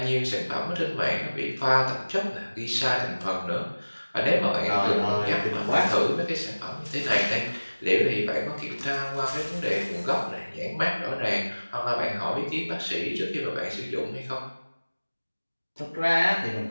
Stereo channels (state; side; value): inverted; both; correlation -1.00